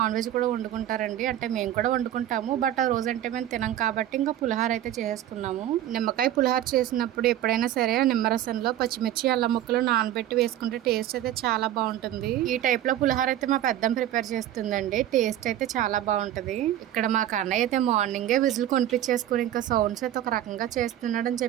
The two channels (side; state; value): left; quieter; 12.3 dB